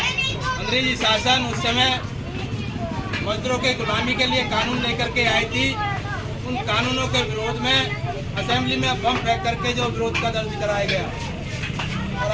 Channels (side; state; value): both; identical; correlation 1.00